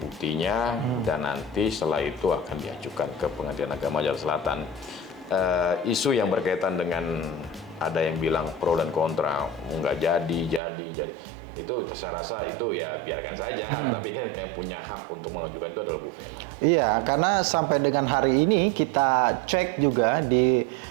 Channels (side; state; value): left; drops out; at 10.6 s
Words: dan nanti setelah itu akan diajukan ke Pengadilan Agama Jakarta Selatan. Isu yang berkaitan dengan ada yang bilang pro dan kontra, nggak jadi. Itu saya rasa itu ya biarkan saja, tapi kan yang punya hak untuk mengajukan itu adalah Bu Vena. Iya, karena sampai dengan hari ini kita cek juga di